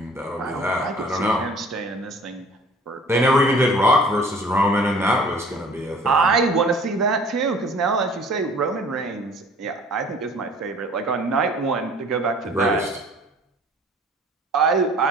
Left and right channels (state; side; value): normal; both; correlation 0.50